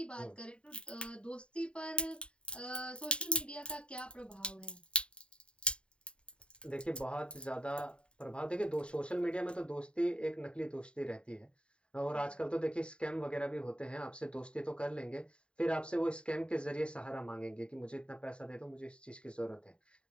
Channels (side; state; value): right; late; 0.054 ms